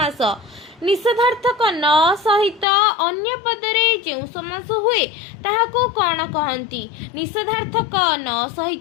निषेधार्थक न सहित अन्य पदरे जो समास हुए ताहाकू कौन कहंती? निषेधार्थक न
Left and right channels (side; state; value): right; drops out; at 2.7 s